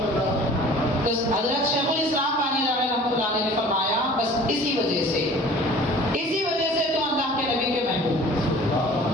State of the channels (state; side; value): normal; both; correlation 0.46